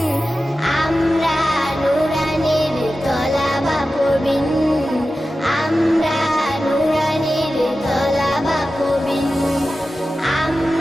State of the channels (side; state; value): both; normal; correlation 0.94